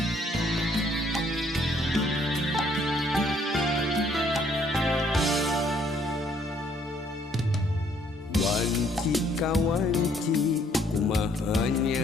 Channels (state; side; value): normal; both; correlation 0.65